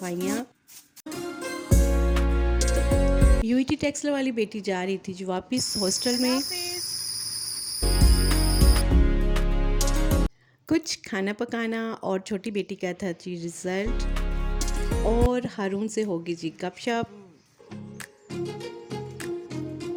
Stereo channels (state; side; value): identical; both; correlation 1.00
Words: यूईटी टेक्सला वाली बेटी जा रही थी जो वापस हॉस्टल में। कुछ खाना पकाना और छोटी बेटी का था जी रिज़ल्ट, और हारून से होगी जी गपशप।